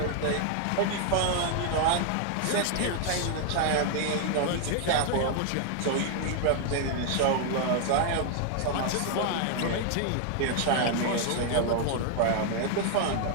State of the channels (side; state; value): both; different; correlation 0.00